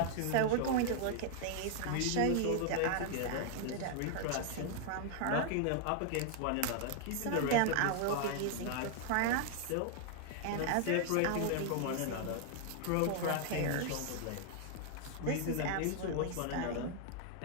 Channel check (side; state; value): both; different; correlation 0.00